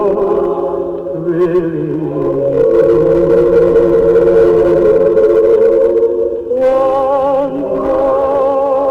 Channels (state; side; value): identical; both; correlation 1.00